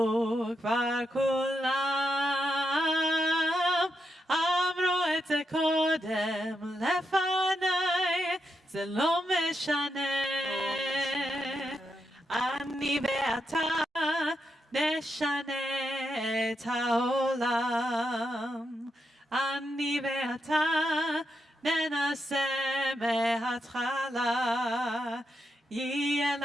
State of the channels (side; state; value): both; normal; correlation 0.84